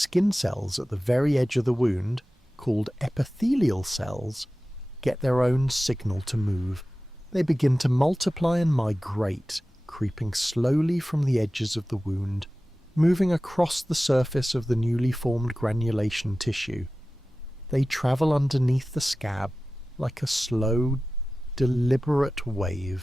cells at the very edge of the wound, called epithelial cells, get their own signal to move. They begin to multiply and migrate, creeping slowly from the edges of the wound, moving across the surface of the newly formed granulation tissue. They travel underneath the scab like a slow, deliberate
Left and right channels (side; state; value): both; normal; correlation 0.96